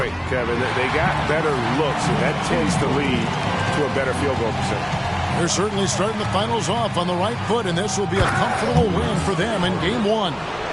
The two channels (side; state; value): both; identical; correlation 1.00